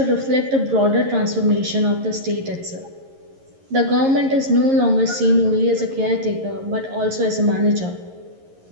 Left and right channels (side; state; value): left; late; 11 ms